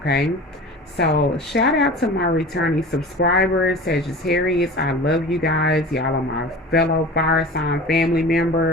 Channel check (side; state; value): both; normal; correlation 0.37